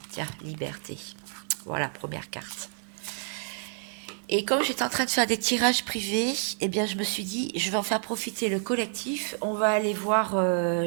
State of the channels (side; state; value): left; silent; digital silence